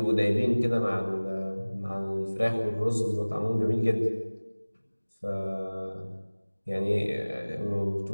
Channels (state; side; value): inverted; both; correlation -1.00